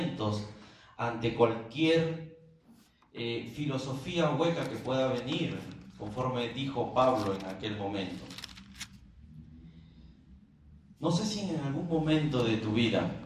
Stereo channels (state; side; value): identical; both; correlation 1.00